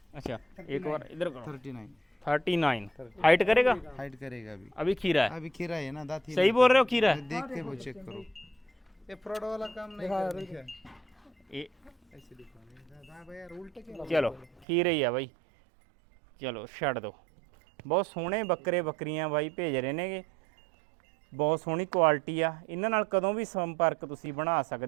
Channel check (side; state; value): left; drops out; at 14.7 s